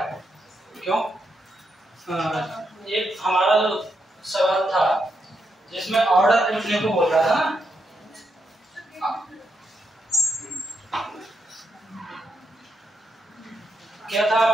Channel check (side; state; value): both; normal; correlation 0.82